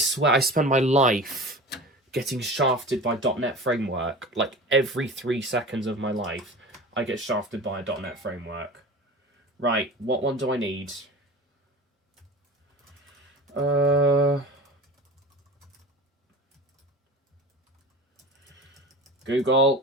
I spend my life getting shafted by .NET framework. Like, every 3 seconds of my life, I get shafted by a .NET framework. Right, what one do I need?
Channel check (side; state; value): both; normal; correlation 0.34